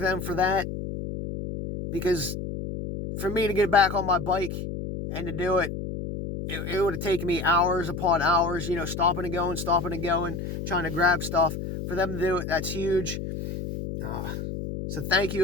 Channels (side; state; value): left; noise; hum, 6 dB below the sound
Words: them for that, because for me to get back on my bike and to do it, it would have taken me hours upon hours, stopping and going, trying to grab stuff. For them to do it, that's huge. So thank